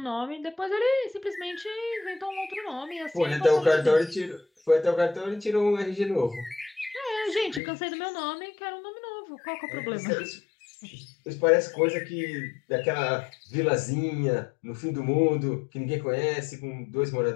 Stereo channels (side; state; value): right; drops out; at 7.6 s